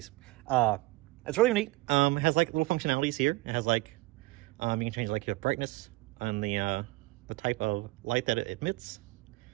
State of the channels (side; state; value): left; quieter; 21.4 dB